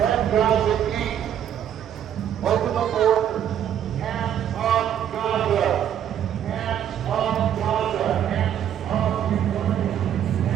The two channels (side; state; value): left; quieter; 9.9 dB